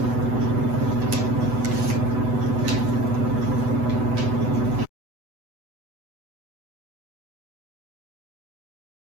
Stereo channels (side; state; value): left; late; 8.0 ms